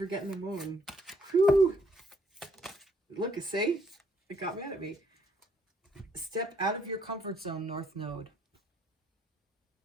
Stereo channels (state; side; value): normal; both; correlation 0.67